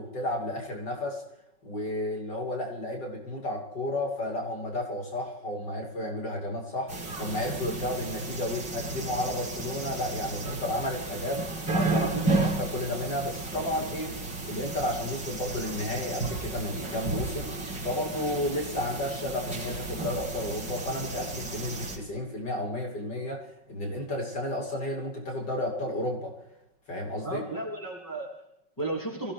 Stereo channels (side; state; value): right; late; 5.4 ms